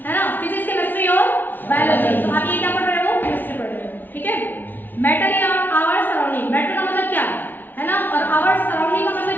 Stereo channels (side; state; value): right; late; 0.090 ms